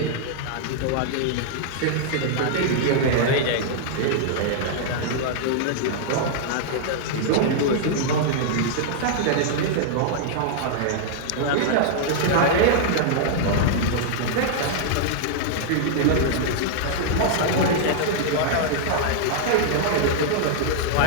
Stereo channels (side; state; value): both; different; correlation -0.01